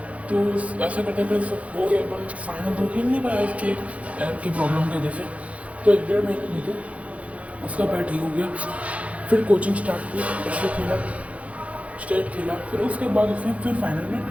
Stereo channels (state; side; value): late; left; 0.065 ms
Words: तो ऐसा करते करते सब हो गया, पर फाइनल तो खेल नहीं पाया इसके पैर की प्रॉब्लम की वजह से। तो 1-1.5 महीने बीते, उसका पैर ठीक हो गया। फिर कोचिंग स्टार्ट की, डिस्ट्रिक्ट खेला, स्टेट खेला। फिर उसके बाद उसने फिर फाइनल में